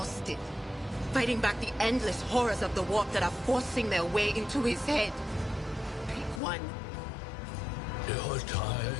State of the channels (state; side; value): drops out; right; at 6.4 s